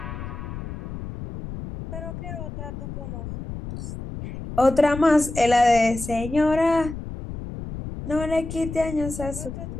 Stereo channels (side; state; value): left; noise; rumble, 9 dB below the sound